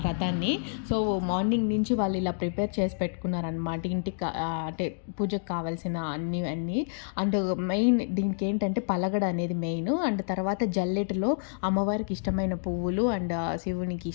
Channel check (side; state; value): right; silent; digital silence